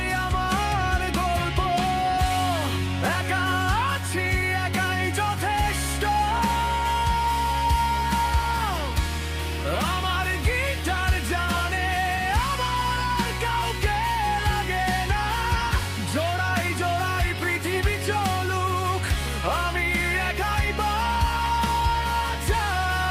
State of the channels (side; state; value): both; identical; correlation 1.00